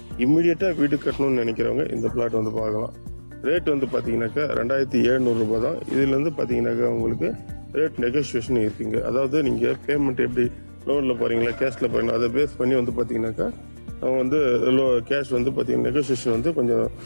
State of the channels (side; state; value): both; inverted; correlation -1.00